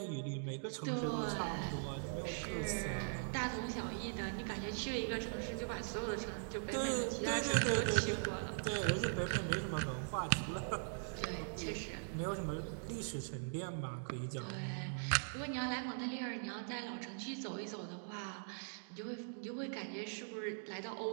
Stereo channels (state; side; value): silent; left; digital silence